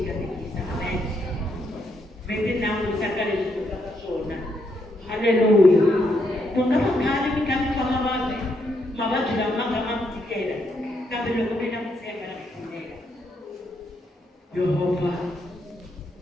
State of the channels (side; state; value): both; normal; correlation 0.77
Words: katekisa. Amen. Mi ti langusa ka leswi ku nga swona. Haleluya. Ku nga va khale mi kha mi famba mavabyi lama nga ma mi tikela, kambe loko mi na ku tshemba na ku pfumela Yehovha